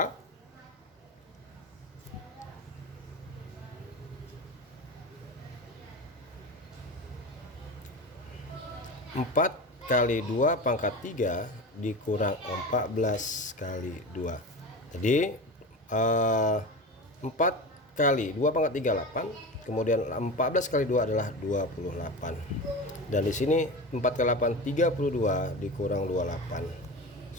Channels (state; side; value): normal; both; correlation 0.27